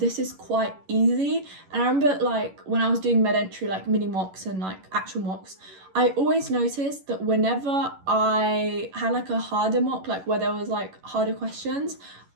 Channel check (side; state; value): left; late; 11 ms